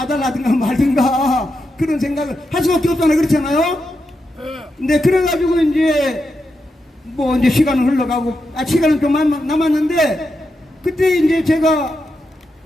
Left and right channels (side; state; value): both; normal; correlation 0.86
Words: 말든가 그런 생각을 할 수밖에 없잖아요. 그렇잖아요. 근데 그래가지고 이제 이제 시간은 흘러가고 시간은 좀 남았는데 그때 이제 제가